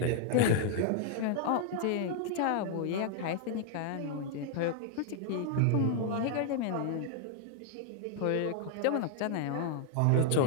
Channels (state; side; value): different; both; correlation 0.00